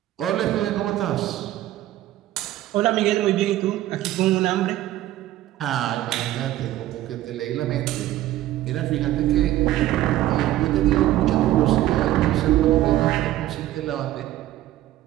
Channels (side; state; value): left; quieter; 14.4 dB